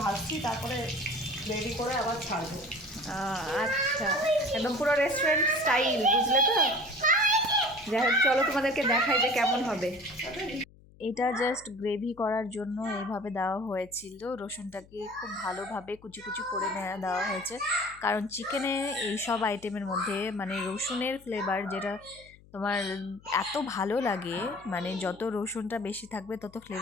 ভাজছি, তারপরে রেডি করে আবার ছাড়বো। আচ্ছা, একদম পুরো রেস্টুরেন্ট স্টাইল, বুঝলে তো? যাই হোক, চলো তোমাদেরকে দেখাই যে কেমন হবে। এটা জাস্ট গ্রেভি করার জন্য এইভাবে দেওয়া হয়েছিল। রসুনটাকে খুব ভালোভাবে কুচি কুচি করে দেওয়া হয়েছে, কারণ চিকেনে এই সব আইটেমের মধ্যে মানে রসুনের ফ্লেভার যেটা তোমার এত ভালো লাগে, মানে যত রসুনটা বেশি থাকবে তত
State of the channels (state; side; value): noise; left; hum, 25 dB below the sound